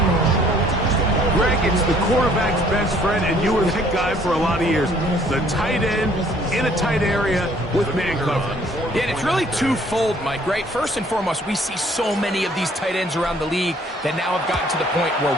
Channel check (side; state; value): both; normal; correlation 0.60